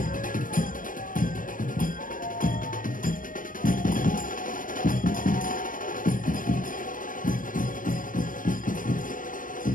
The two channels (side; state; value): right; late; 0.39 ms